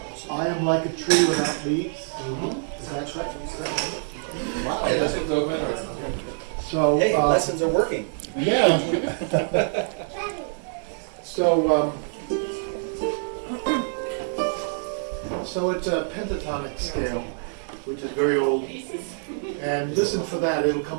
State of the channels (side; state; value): left; silent; digital silence